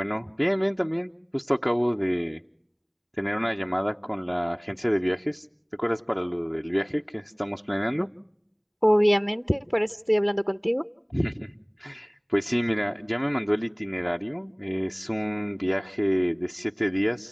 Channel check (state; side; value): identical; both; correlation 1.00